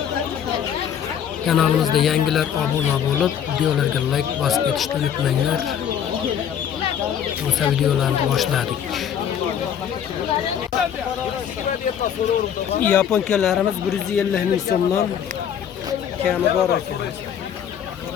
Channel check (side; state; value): right; quieter; 8.9 dB